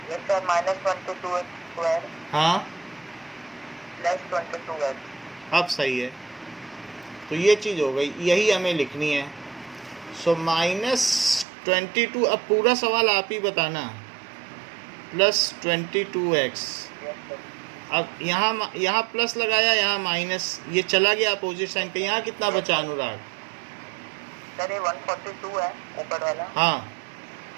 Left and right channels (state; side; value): drops out; left; at 11.5 s